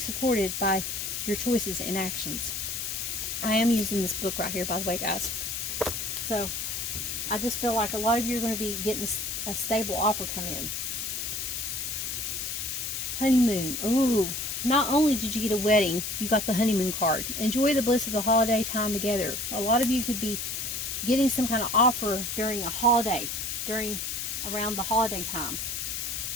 by your choices and actions. I am using this book right here, by the way, guys. So I just feel like a lot of you are going to be getting a stable offer come in. Honeymoon. Ooh. Not only did you get a wedding, you got the honeymoon card. Enjoy the bliss of the holiday time together. A lot of you could be getting some kind of offer during a holiday, around the holiday time.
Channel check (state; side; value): noise; left; hiss, 3 dB below the sound